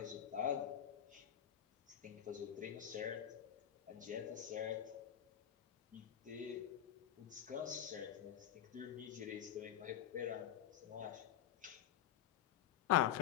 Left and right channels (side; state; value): right; quieter; 10.8 dB